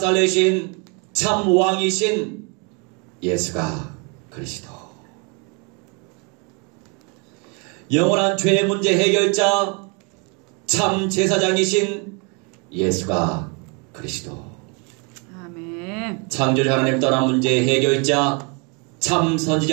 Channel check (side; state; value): left; quieter; 33.6 dB